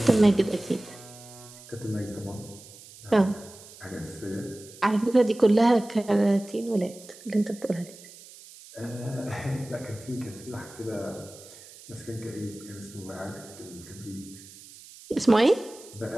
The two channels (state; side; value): noise; right; hiss, 19 dB below the sound